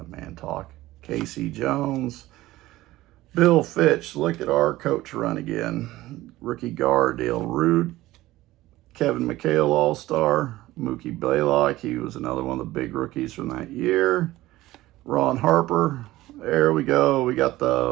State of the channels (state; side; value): quieter; left; 16.9 dB